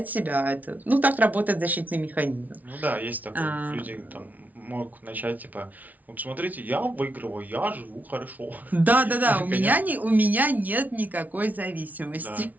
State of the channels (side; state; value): left; late; 0.076 ms